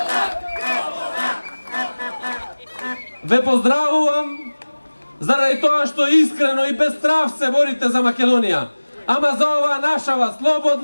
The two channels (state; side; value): inverted; both; correlation -1.00